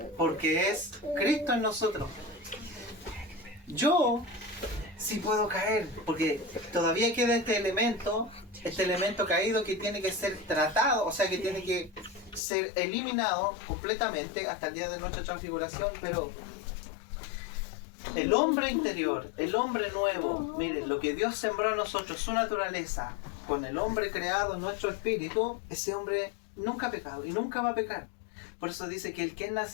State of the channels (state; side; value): drops out; right; at 12.4 s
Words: porque es Cristo en nosotros. Yo sí puedo caer, porque todavía queda este elemento caído que tiene que ser tratado, o sea que tiene que ser eliminado completamente hasta el día de nuestra transfiguración, pero el hombre interior, el hombre nuevo, miren, lo que Dios sembró en nosotros, su naturaleza, con el hombre creado en nuestro espíritu, ese hombre nunca ha pecado y nunca va a pecar. Por eso dice que el que es